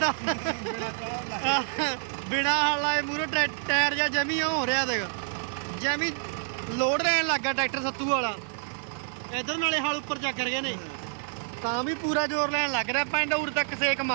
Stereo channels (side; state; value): left; silent; 59 dB below the other